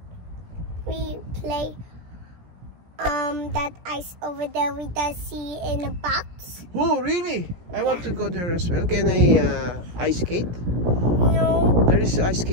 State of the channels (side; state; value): left; late; 17 ms